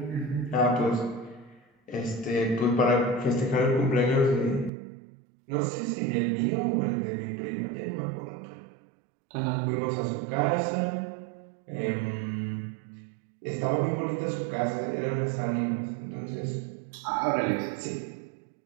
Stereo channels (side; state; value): left; drops out; at 4.7 s